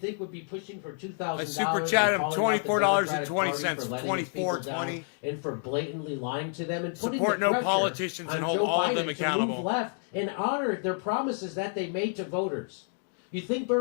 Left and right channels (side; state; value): right; silent; 56 dB below the other